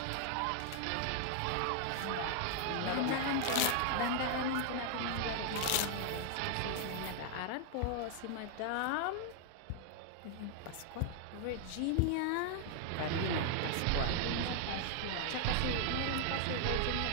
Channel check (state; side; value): different; both; correlation 0.00